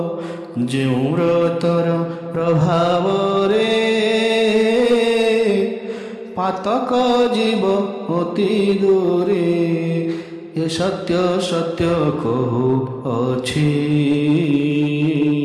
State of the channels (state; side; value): identical; both; correlation 1.00